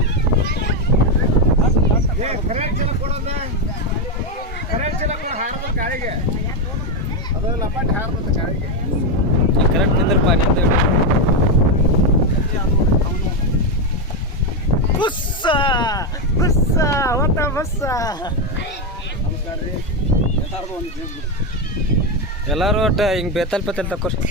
ಗಾಳಿಗೆ ಅದು ಲಪಾಟ್ ಹಾರ್ಬೇಕು ಗಾಳಿಗೆ ಕರೆಕ್ಟ್ ನಿಂದ್ರಪ್ಪ ನಿಂದ ಬುಸ್ಸ ಬುಸ್ಸ ಹೊತ್ತ ಬುಸ್ಸ ಎಲ್ಲರೂ ಒಟ್ಟು ಹಿಂಗೆ ಬೇತಲ್ ತಕೋರಿ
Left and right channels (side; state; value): both; normal; correlation 0.07